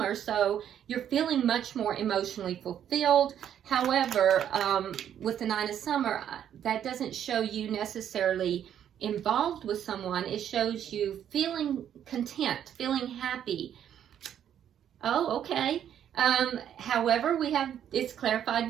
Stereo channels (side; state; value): left; quieter; 9.8 dB